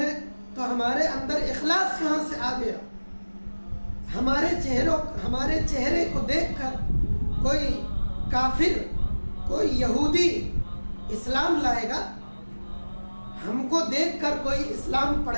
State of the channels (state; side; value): inverted; both; correlation -1.00